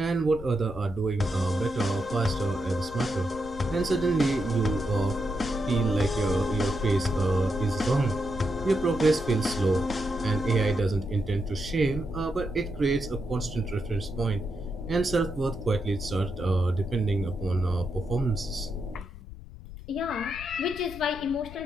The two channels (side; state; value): left; noise; rumble, 14 dB below the sound